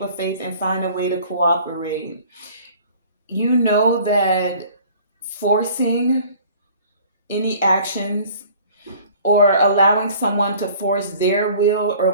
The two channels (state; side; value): inverted; both; correlation -0.50